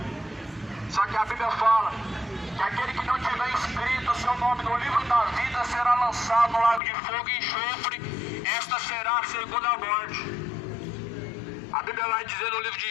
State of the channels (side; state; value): right; drops out; at 6.8 s